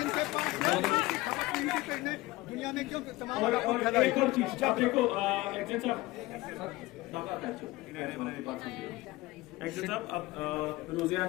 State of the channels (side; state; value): right; quieter; 19.5 dB